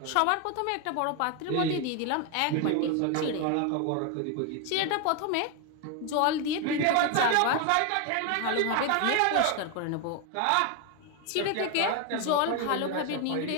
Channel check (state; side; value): different; both; correlation 0.01